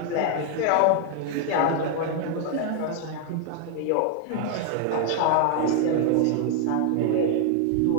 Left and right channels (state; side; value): different; both; correlation 0.00